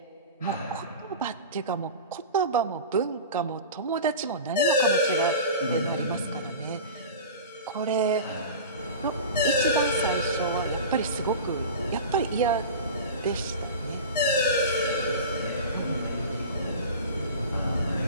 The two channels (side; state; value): both; inverted; correlation -0.32